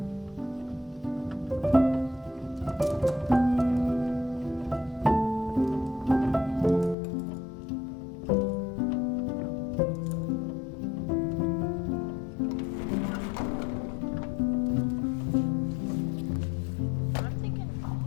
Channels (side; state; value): right; drops out; at 7.0 s